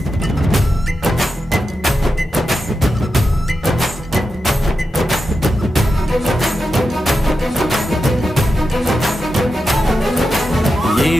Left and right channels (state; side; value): normal; both; correlation 0.89